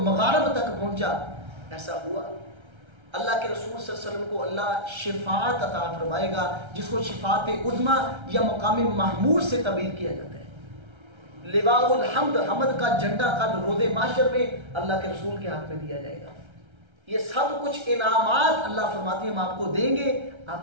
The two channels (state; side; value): late; left; 1.3 ms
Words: مغارب تک پہنچا، ایسا ہوا۔ اللہ کے رسول صلی اللہ علیہ وسلم کو اللہ شفاعت عطا فرمائے گا، جس کو شفاعت عظمی یا مقام محمود سے تعبیر کیا جاتا ہے۔ لواء الحمد، حمد کا جھنڈا کل روز محشر میں اللہ کے رسول کے ہاتھ میں دیا جائے گا۔ یہ سب کچھ انعامات اللہ فرماتے ہیں ہم آپ کو دیں گے،